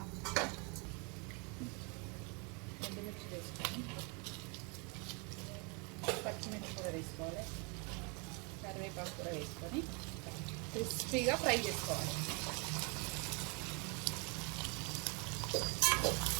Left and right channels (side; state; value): left; quieter; 33.1 dB